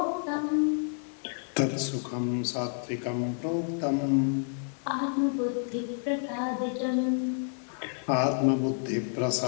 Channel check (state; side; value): silent; right; 57 dB below the other